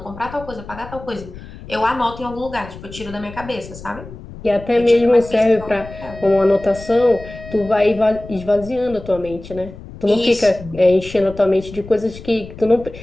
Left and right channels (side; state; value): left; noise; rumble, 15 dB below the sound